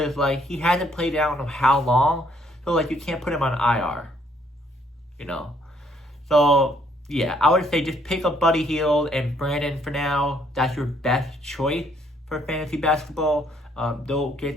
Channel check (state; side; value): normal; both; correlation 0.67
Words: he hasn't played out in how long, so you can't put him on IR. So yeah, I would say just pick up Buddy Hield and Brandon for now. That's your best choice for fantasy basketball. They'll get